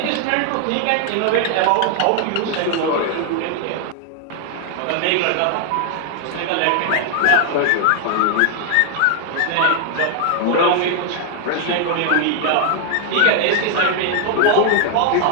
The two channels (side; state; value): both; different; correlation 0.00